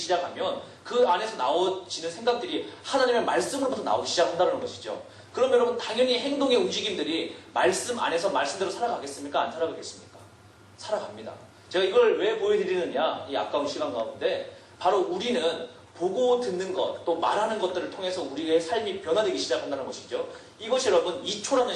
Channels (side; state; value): both; identical; correlation 1.00